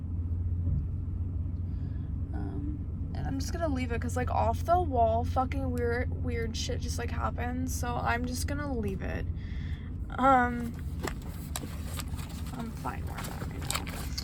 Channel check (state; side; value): identical; both; correlation 1.00